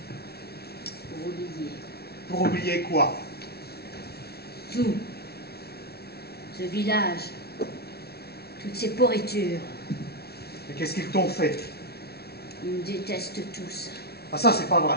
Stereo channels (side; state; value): right; late; 0.46 ms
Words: Pour oublier. Pour oublier quoi? Tout. Ce village. Toutes ces pourritures. Et qu'est-ce qu'ils t'ont fait? Ils me détestent tous. Ah ça, c'est pas vrai.